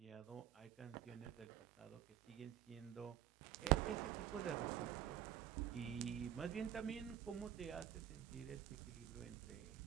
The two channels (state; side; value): quieter; left; 11.2 dB